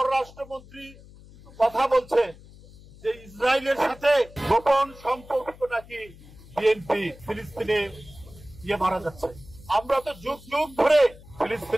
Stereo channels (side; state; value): left; noise; hum, 21 dB below the sound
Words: কথা বলছে যে ইসরায়েলের সাথে গোপন সম্পর্ক নাকি বিএনপি ফিলিস্তিনে মারা যাচ্ছে। আমরা তো যুগ যুগ ধরে